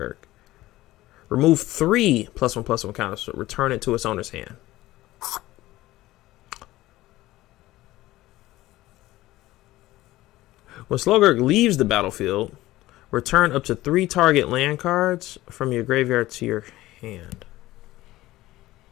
Remove 3 +1/+1 counters. So return it to its owner's hand. When Slogurk leaves the battlefield, return up to 3 target land cards from your graveyard to your hand.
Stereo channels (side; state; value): right; quieter; 16.9 dB